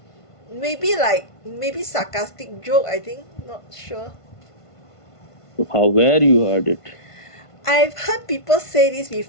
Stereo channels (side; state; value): right; late; 1.5 ms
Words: maybe sarcastic joke. I think not sure. How, where you heard it? I've heard people say this